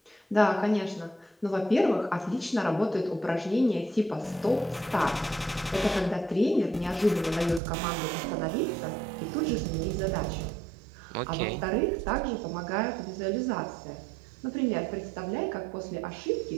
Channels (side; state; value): left; drops out; at 7.6 s